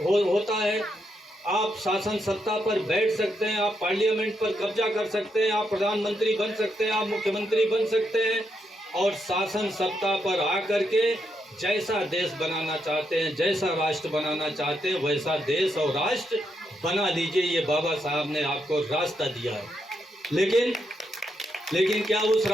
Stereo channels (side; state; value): both; normal; correlation 0.80